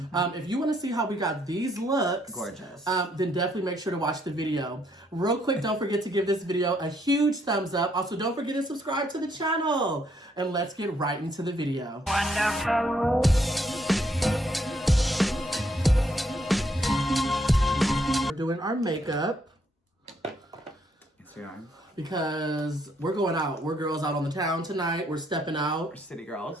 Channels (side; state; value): both; normal; correlation 0.72